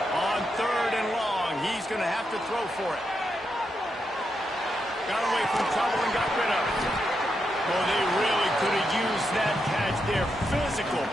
Going to have to throw for it. Got away from trouble and got rid of it. Well, they really could have used that catch there. Physical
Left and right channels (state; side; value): normal; both; correlation 0.84